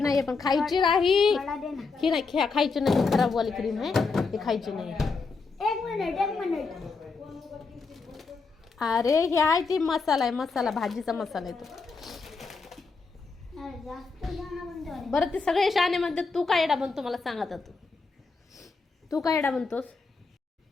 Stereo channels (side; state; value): right; quieter; 4.4 dB